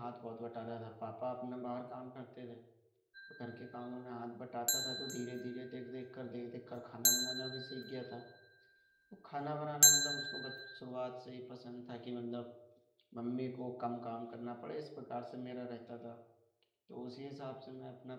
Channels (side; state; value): both; identical; correlation 1.00